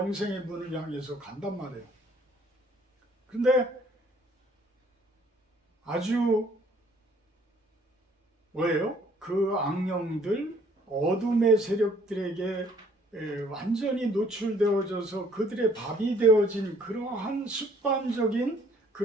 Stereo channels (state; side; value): normal; both; correlation 0.61